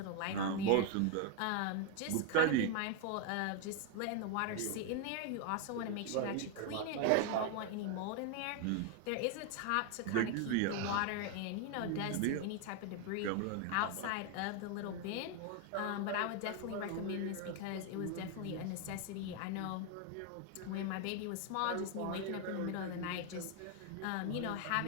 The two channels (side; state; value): both; different; correlation 0.01